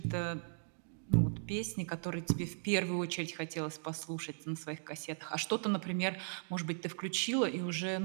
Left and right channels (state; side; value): silent; left; digital silence